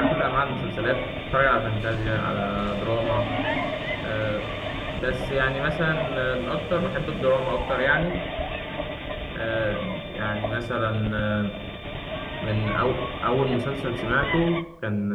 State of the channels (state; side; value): identical; both; correlation 1.00